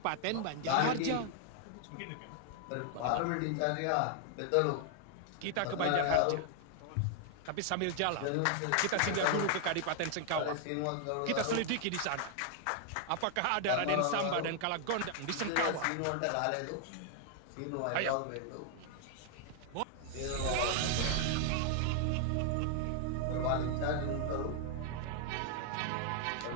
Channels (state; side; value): different; both; correlation 0.00